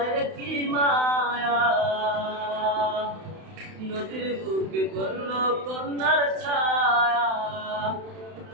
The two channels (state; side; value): late; left; 31 ms